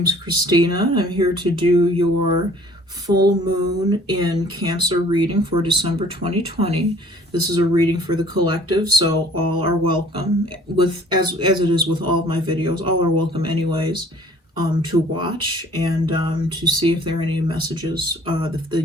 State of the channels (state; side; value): normal; both; correlation 0.54